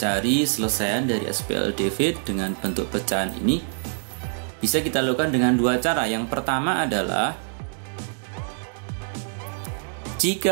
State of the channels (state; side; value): silent; left; digital silence